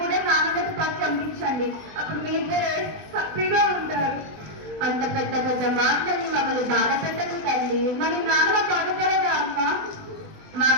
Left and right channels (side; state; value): left; late; 20 ms